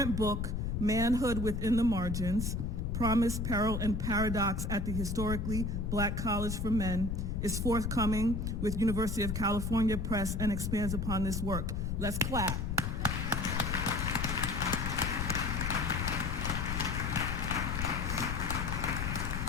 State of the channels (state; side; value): noise; left; rumble, 1 dB below the sound